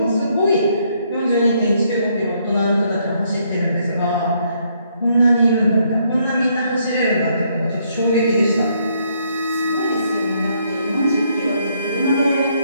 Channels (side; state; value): both; inverted; correlation -0.71